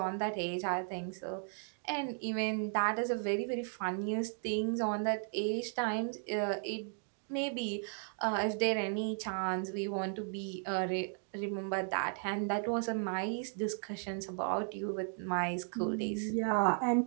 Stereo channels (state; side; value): silent; left; 54 dB below the other